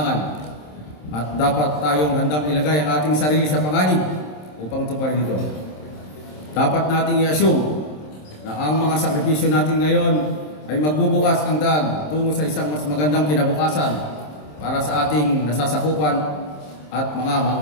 at dapat tayong handang ilagay ang ating sarili sa panganib upang tuparin ito. Dapat nating i-assume na ang mga sakripisyo natin ngayon ay magbubukas ang daan tungo sa isang mas magandang kinabukasan para sa ating nasasakupan at mga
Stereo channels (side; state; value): right; late; 27 ms